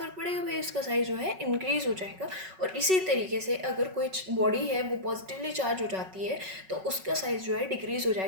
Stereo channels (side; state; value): left; late; 5.3 ms